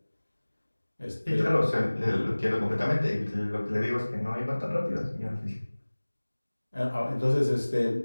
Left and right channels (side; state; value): both; inverted; correlation -1.00